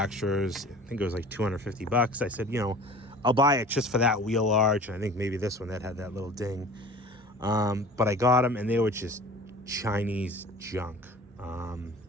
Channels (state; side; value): normal; both; correlation 0.42